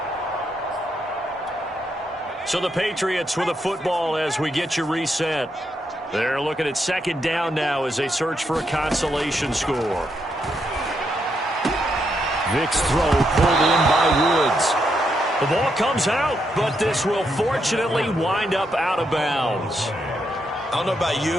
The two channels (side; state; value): both; normal; correlation 0.80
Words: So the Patriots with a football as we get you reset. They're looking at second down now as they search for a consolation score. Vick's throw pulled in by Woods. The ball comes out, but this will fortunately wind up out of bounds. I don't know about